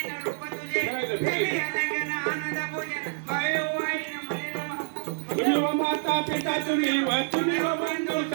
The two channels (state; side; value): silent; left; digital silence